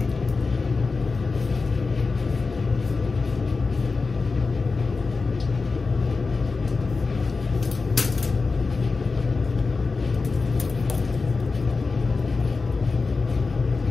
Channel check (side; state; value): right; quieter; 4.2 dB